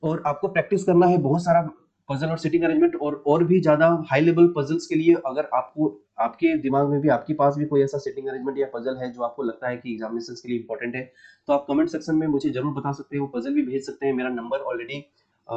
और आपको प्रैक्टिस करना है बहुत सारा पजल और सिटिंग अरेंजमेंट, और भी ज्यादा हाई लेवल पजल्स के लिए अगर आपको आपके दिमाग में भी आपके पास भी कोई ऐसा सिटिंग अरेंजमेंट या पजल है जो आपको लगता है कि एग्जामिनेशन के लिए इंपॉर्टेंट है, तो आप कमेंट सेक्शन में मुझे जरूर बता सकते हैं, वो पजल भी भेज सकते हैं। मेरा नंबर ऑलरेडी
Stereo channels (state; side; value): identical; both; correlation 1.00